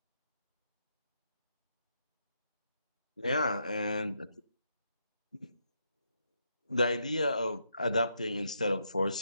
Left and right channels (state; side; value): inverted; both; correlation -0.80